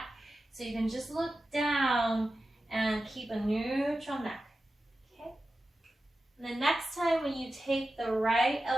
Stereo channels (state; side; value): normal; both; correlation 0.93